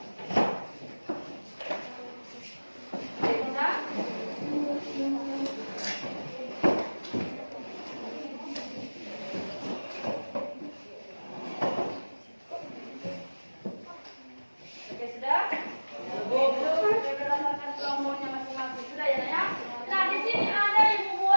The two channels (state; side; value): inverted; both; correlation -1.00